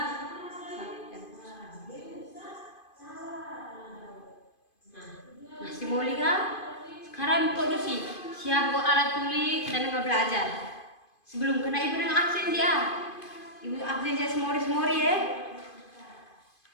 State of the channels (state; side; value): late; right; 2.5 ms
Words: Masih mau lihat? Sekarang produksi. Siap buat alat tulis, kita nengah belajar. Sebelum kena ibu nengah absen dia. Ibu absen dia semori ya.